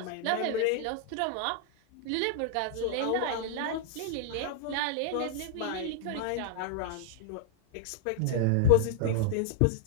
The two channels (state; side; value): different; both; correlation -0.01